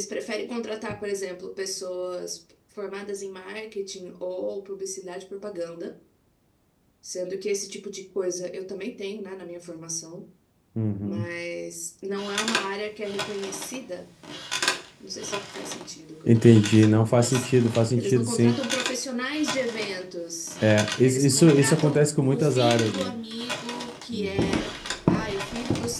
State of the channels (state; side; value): identical; both; correlation 1.00